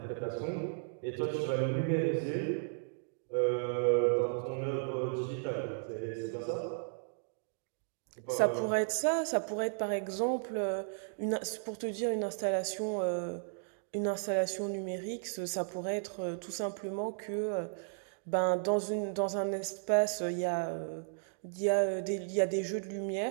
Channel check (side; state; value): left; silent; digital silence